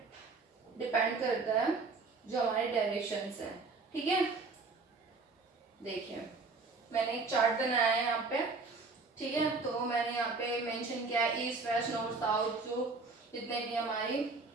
डिपेंड करता है जो हमारे डायरेक्शंस हैं, ठीक है। देखिए मैंने एक चार्ट बनाया है यहाँ पे, ठीक है। तो मैंने यहाँ पे मेंशन किया है ईस्ट वेस्ट नॉर्थ साउथ, जो जितने भी हमारी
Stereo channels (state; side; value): quieter; left; 4.0 dB